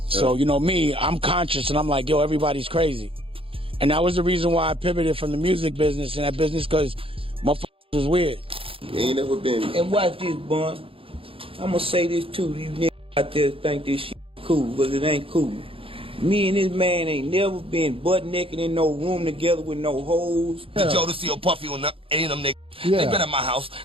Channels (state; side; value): late; left; 0.27 ms